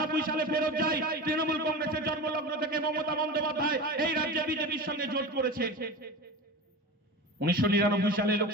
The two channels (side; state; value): both; normal; correlation 0.29